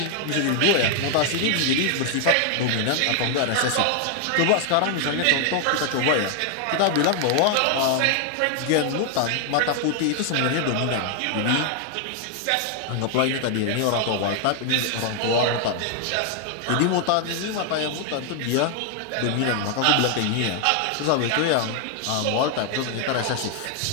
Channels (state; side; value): different; both; correlation 0.00